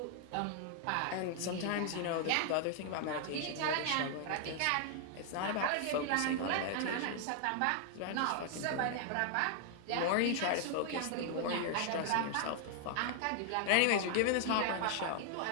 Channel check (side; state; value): both; different; correlation 0.00